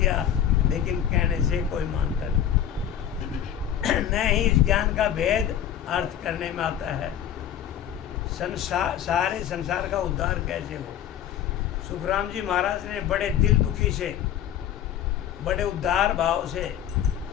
लेकिन कहने से कोई मानता नहीं। न ही इस ज्ञान का भेद अर्थ करने में आता है। सारे संसार का उद्धार कैसे हो। सुखराम जी महाराज ने बड़े दिल दुखी से, बड़े उदार भाव से,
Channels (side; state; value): right; quieter; 10.1 dB